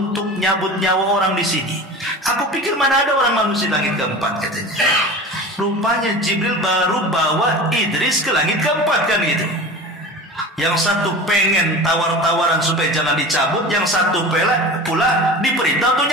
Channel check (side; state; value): both; normal; correlation 0.34